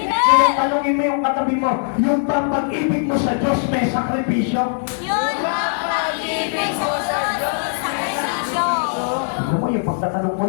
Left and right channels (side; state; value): right; silent; 66 dB below the other